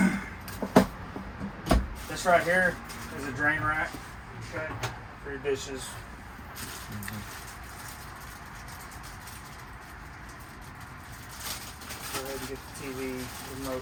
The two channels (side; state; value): both; identical; correlation 1.00